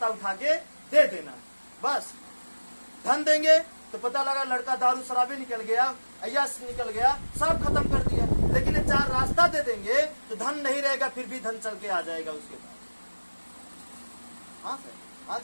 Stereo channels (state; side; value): inverted; both; correlation -1.00